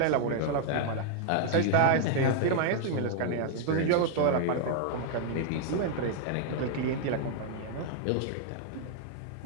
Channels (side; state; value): both; different; correlation 0.00